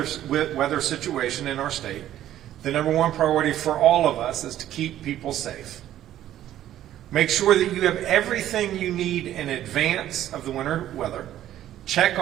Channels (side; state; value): left; quieter; 12.4 dB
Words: situation in our state, the number one priority for all of us is to keep people safe. Make sure that you have everything you need in advance of the winter weather. Check